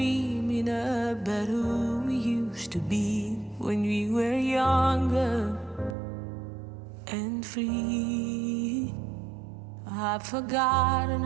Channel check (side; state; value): left; drops out; at 6.0 s